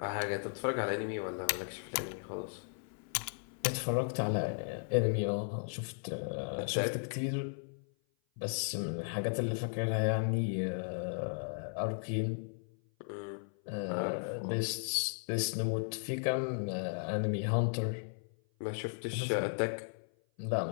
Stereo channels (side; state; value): right; silent; 54 dB below the other